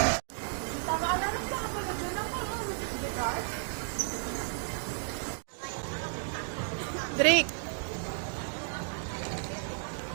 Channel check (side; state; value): left; silent; digital silence